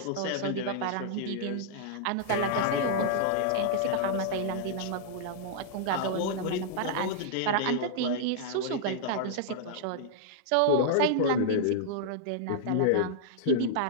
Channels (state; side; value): different; both; correlation -0.02